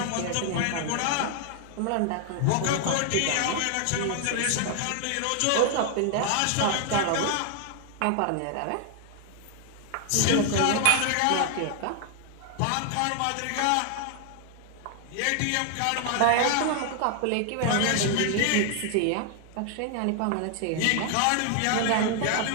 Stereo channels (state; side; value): different; both; correlation 0.00